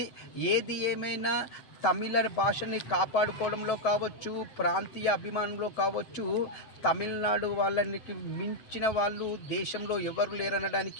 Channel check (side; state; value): right; late; 8.1 ms